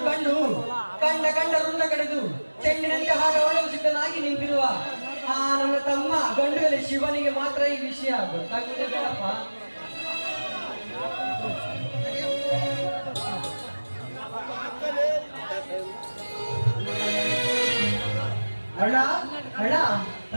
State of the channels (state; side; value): inverted; both; correlation -1.00